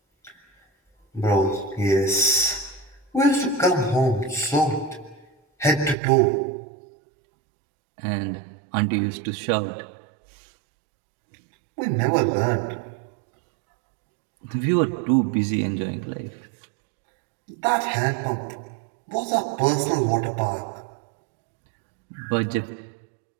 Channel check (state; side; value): drops out; left; at 6.0 s